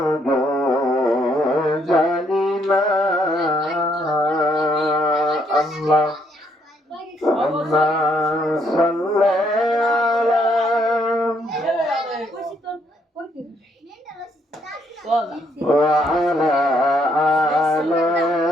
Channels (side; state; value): both; normal; correlation 0.71